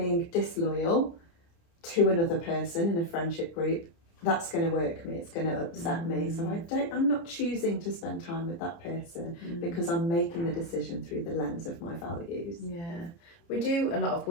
disloyal to another person in a friendship group, that's going to work me, it's going to upset me. So I'm not choosing to spend time with that person because I'm making the decision through the lens of my values. Yeah, we do a lot of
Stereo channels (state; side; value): late; right; 29 ms